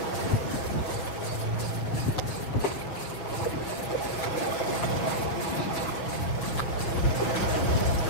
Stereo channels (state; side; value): late; right; 6.4 ms